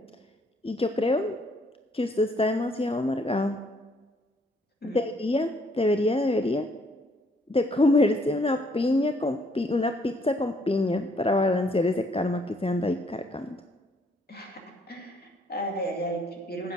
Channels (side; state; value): both; normal; correlation 0.67